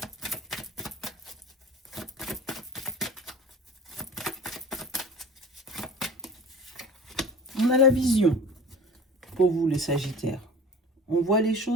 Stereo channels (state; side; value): normal; both; correlation 0.39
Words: On a la vision pour vous les Sagittaires. On voit les